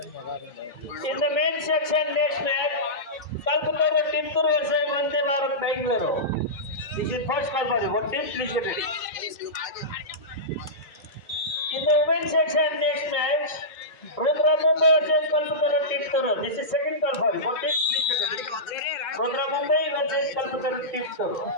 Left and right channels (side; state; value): right; late; 1.5 ms